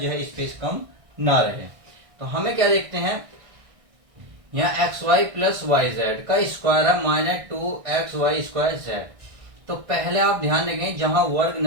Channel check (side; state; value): left; late; 1.6 ms